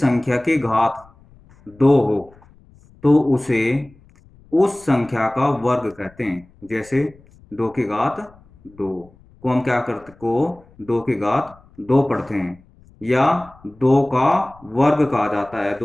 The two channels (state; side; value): noise; left; rumble, 27 dB below the sound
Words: की घात 2 हो तो उसे उस संख्या का वर्ग कहते हैं। जैसे 2 की घात 2 को हम क्या करते को 2 की घात 2 पढ़ते हैं, या 2 का वर्ग कहा जाता है।